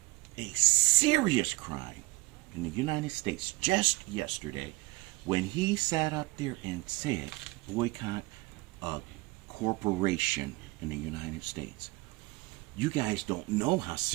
a serious crime in the United States just yesterday when he sat up there and said, boycott a corporation in the United States. You guys don't know how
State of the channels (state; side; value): quieter; left; 21.3 dB